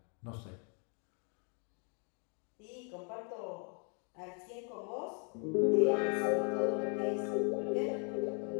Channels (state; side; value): quieter; right; 39.2 dB